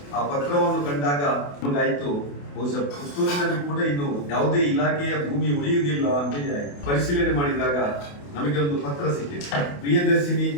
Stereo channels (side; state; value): right; late; 28 ms